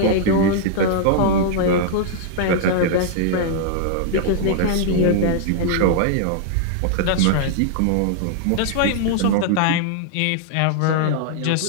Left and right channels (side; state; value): both; different; correlation -0.01